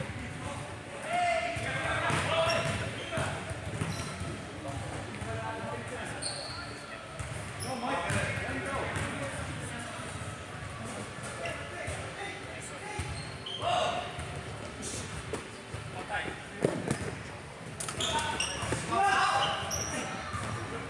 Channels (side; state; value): both; identical; correlation 1.00